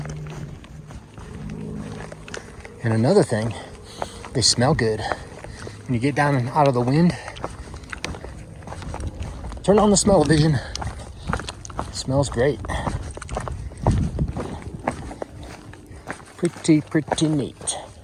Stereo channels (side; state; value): both; identical; correlation 1.00